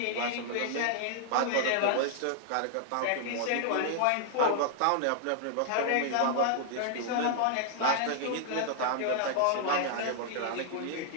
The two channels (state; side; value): different; both; correlation -0.01